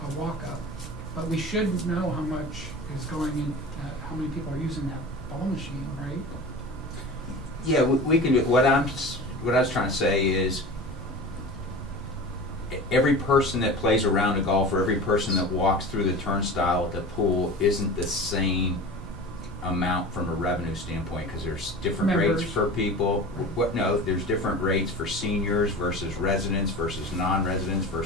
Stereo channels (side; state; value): both; normal; correlation 0.34